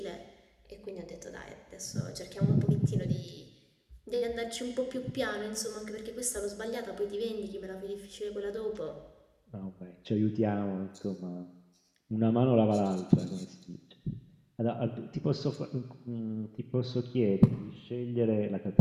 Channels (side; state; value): both; identical; correlation 1.00